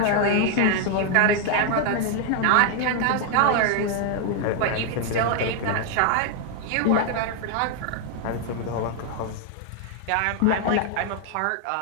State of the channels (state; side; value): different; both; correlation 0.00